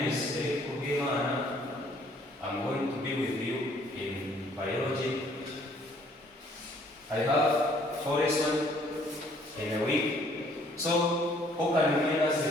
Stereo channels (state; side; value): normal; both; correlation 0.61